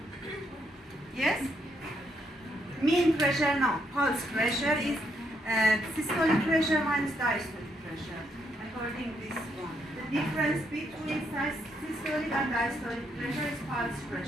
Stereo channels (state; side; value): normal; both; correlation 0.75